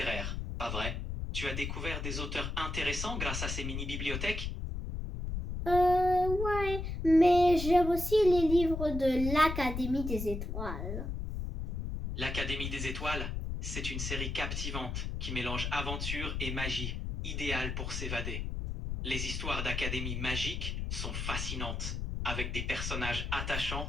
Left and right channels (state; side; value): noise; left; rumble, 4 dB below the sound